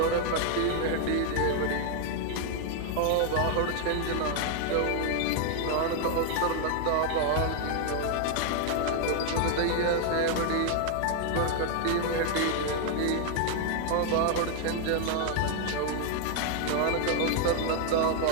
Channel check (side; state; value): both; different; correlation 0.00